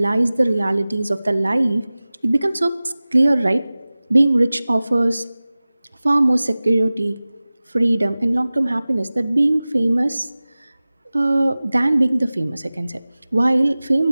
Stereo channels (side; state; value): both; inverted; correlation -0.98